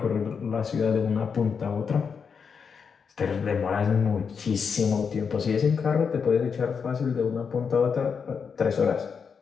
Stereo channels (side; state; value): right; quieter; 6.1 dB